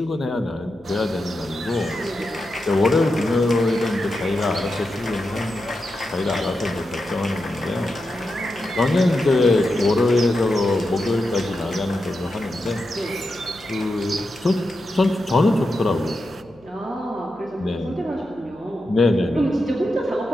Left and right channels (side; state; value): left; noise; hum, 29 dB below the sound